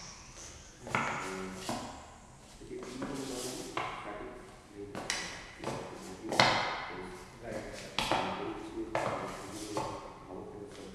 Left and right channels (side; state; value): both; identical; correlation 1.00